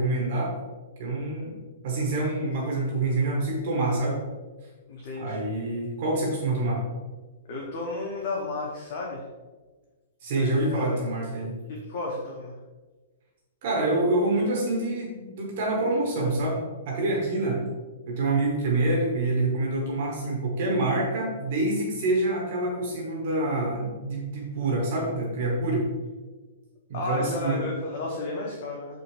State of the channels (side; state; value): both; inverted; correlation -0.36